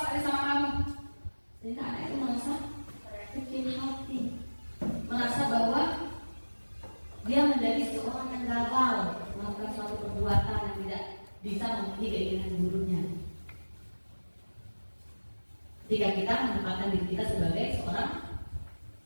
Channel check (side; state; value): both; inverted; correlation -1.00